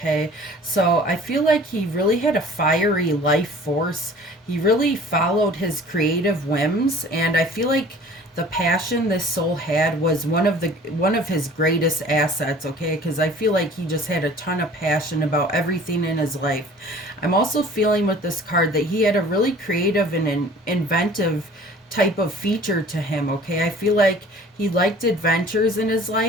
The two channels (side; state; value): both; normal; correlation 0.48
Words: So I feel like he really had a fiery life force. He really followed his creative whims, and I feel like the passion this soul had was one of his greatest assets, okay? Because I feel like he just had a ton of passion about everything in his life. I'm also feeling with this card that he had a really creative and inventive type of feature to him, okay? I feel like he liked adventures in his